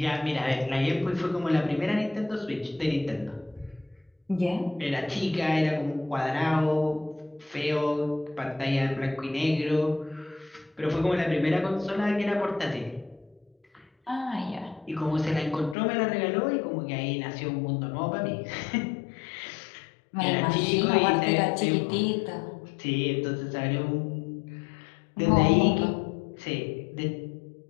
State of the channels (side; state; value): right; drops out; at 15.8 s